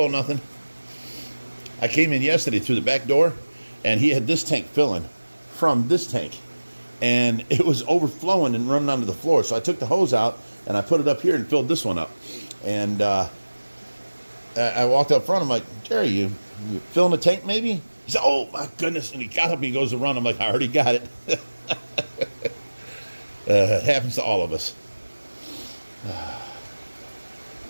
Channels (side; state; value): both; inverted; correlation -1.00